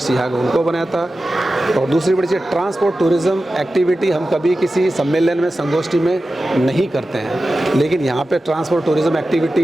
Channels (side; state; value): both; normal; correlation 0.94